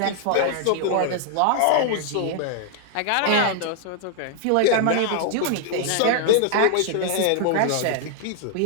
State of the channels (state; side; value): different; both; correlation 0.00